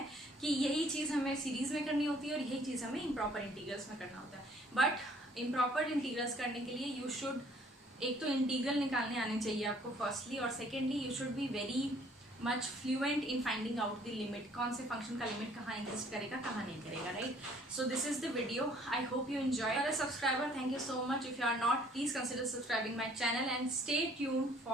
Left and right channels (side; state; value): both; normal; correlation 0.59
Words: कि यही चीज़ हमें सीरीज में करनी होती है और यही चीज़ हमें इम्प्रॉपर इंटीग्रल्स में करना होता है. बट इम्प्रॉपर इंटीग्रल्स करने के लिए यू शुड, एक तो इंटीग्रल निकालने आने चाहिए आपको फर्स्टली, और secondly you should be very much fluent in finding out the limit, कौन से फंक्शन का लिमिट कहाँ एग्जिस्ट करेगा कहाँ नहीं करेगा, right. So this is the video, I hope you enjoy. अगर subscriber, thank you so much. If you are not, please consider subscribing my channel and stay tuned